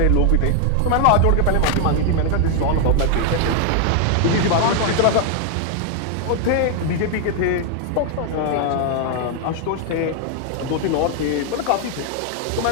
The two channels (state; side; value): different; both; correlation 0.00